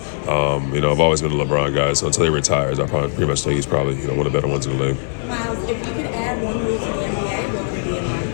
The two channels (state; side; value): silent; right; 61 dB below the other